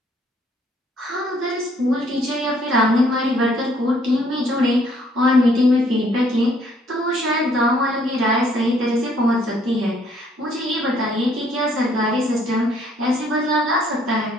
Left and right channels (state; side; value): normal; both; correlation 0.64